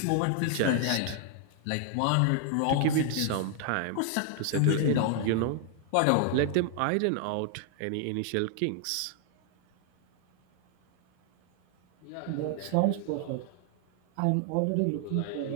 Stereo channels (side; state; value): both; different; correlation 0.00